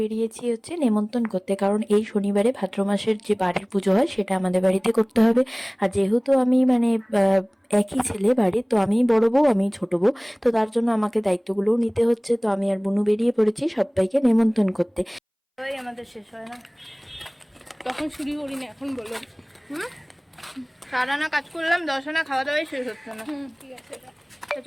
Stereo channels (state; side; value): identical; both; correlation 1.00